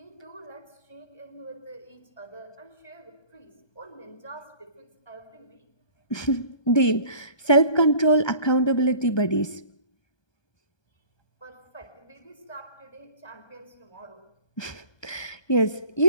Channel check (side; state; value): right; late; 1.2 ms